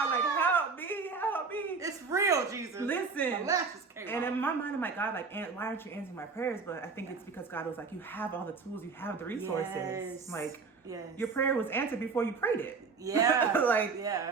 like, help me, help me. It's real, Jesus. Listen. My lashes came And off. in my mind, I'm like, God, like, why aren't you answering my prayers? But I think it's because God was like, you have all the tools. You have the resources. Yes. Like, yes. your prayer was answered before you prayed it. Yeah. Like,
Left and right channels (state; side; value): quieter; left; 4.8 dB